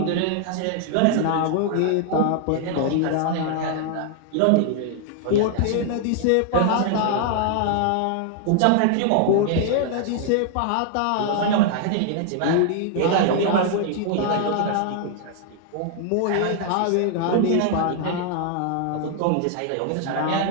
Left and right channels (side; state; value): both; different; correlation 0.00